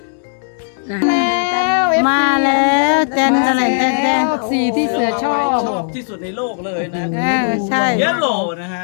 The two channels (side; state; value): right; silent; digital silence